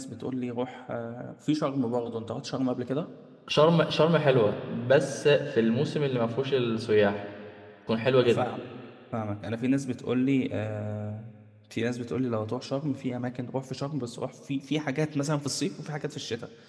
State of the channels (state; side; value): identical; both; correlation 1.00